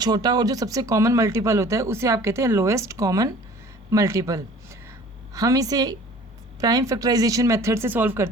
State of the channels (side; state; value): both; normal; correlation 0.48